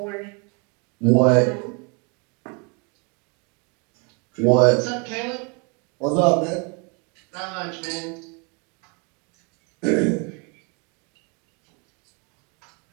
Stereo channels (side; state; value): left; quieter; 33.4 dB